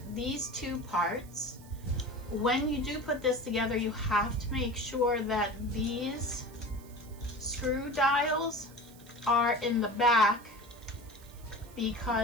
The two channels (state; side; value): noise; right; hiss, 23 dB below the sound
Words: these two parts. When you do put this together, you have to make sure that these screw dials are in the back